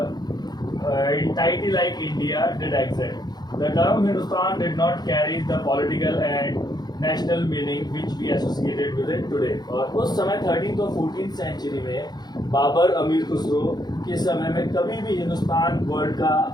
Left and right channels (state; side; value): late; right; 0.20 ms